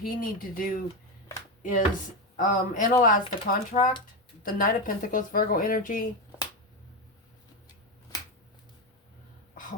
need to do is analyze the contract. The Knight of Pentacles, Virgo energy.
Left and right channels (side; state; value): both; normal; correlation 0.12